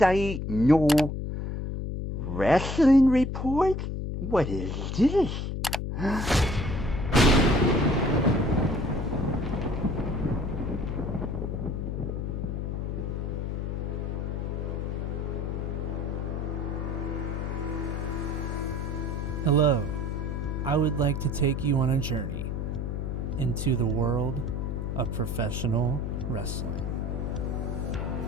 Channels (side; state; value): left; noise; hum, 2 dB below the sound